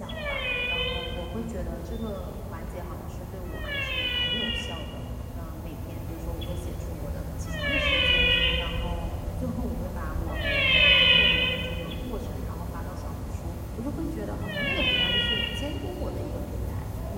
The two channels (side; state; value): both; identical; correlation 1.00